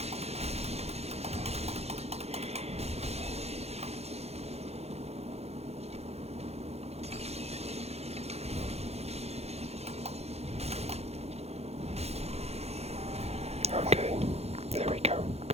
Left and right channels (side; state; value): left; late; 0.31 ms